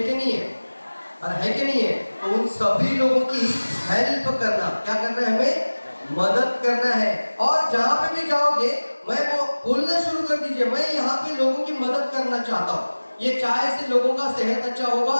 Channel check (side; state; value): both; inverted; correlation -1.00